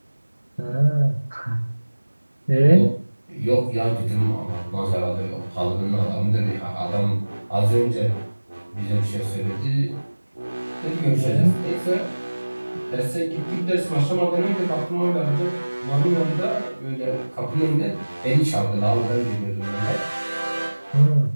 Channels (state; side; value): inverted; both; correlation -1.00